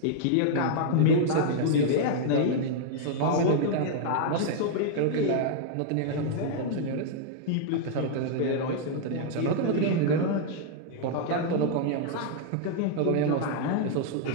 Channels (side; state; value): both; different; correlation -0.01